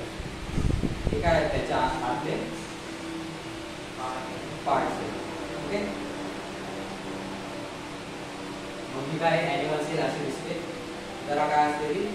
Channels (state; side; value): identical; both; correlation 1.00